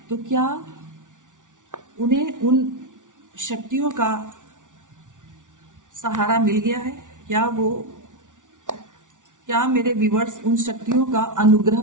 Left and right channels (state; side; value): late; left; 0.87 ms